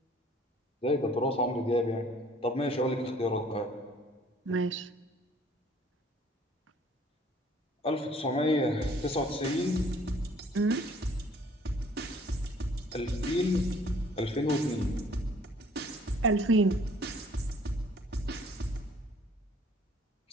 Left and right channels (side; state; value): both; normal; correlation 0.57